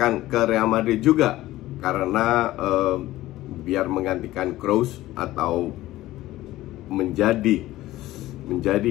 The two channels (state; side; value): quieter; right; 16.3 dB